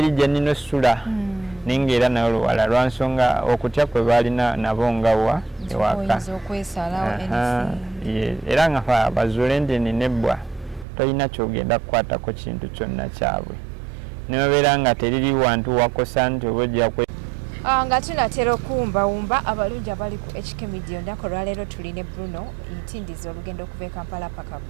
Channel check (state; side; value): drops out; left; at 10.9 s